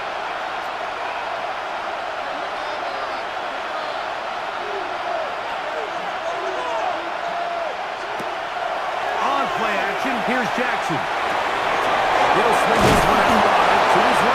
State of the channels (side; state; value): both; identical; correlation 1.00